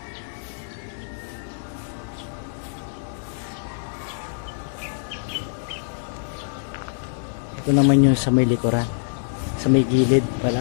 Ito naman yung sa may likuran, sa may gilid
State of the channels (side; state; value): right; silent; 62 dB below the other